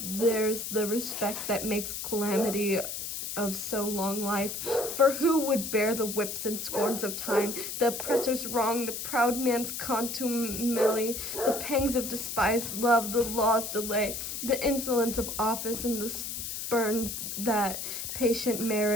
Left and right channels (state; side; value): noise; left; hiss, 5 dB below the sound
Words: There's the respect that makes calamity of so long life. For who would bear the whips and scorns of time, the oppressor's wrong, the proud man's contumely, the pangs of despised love, the law's delay, the insolence of office, and the spurns that patient